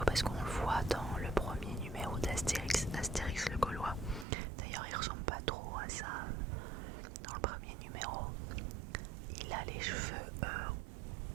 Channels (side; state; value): left; drops out; at 4.2 s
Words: parce qu'on le voit dans le premier numéro d'Astérix, Astérix le Gaulois. D'ailleurs il ressemble pas trop à ça dans le premier numéro. Il a les cheveux